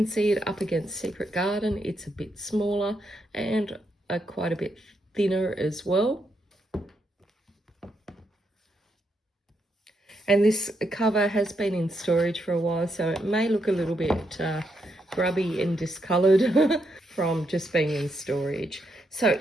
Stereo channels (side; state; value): both; normal; correlation 0.80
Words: see it up against Secret Garden. It's a bit smaller and quite a bit thinner as well. And this cover has been in storage for a while, so it may look a little bit grubby and discoloured from just being in storage. So